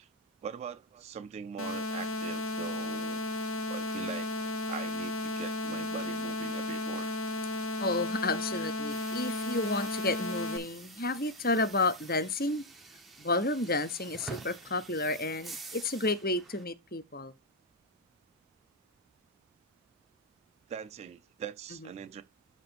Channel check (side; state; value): both; normal; correlation 0.08